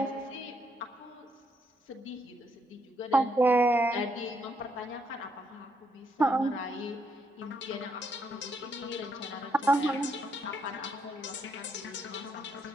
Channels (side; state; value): both; normal; correlation 0.75